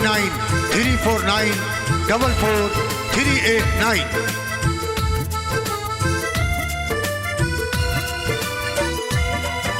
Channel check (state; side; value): identical; both; correlation 1.00